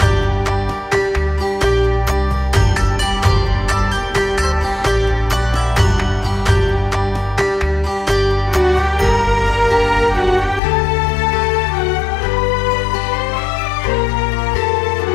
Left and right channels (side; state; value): right; drops out; at 10.6 s